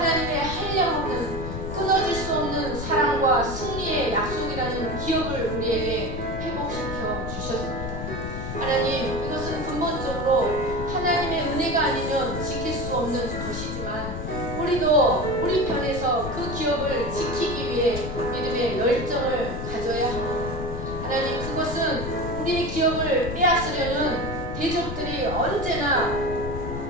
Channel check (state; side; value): noise; left; rumble, 5 dB below the sound